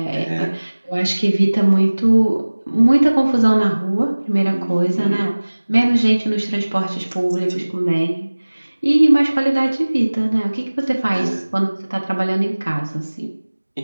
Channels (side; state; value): both; inverted; correlation -1.00